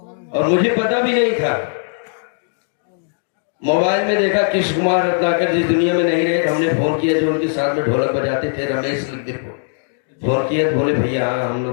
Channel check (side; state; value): right; silent; digital silence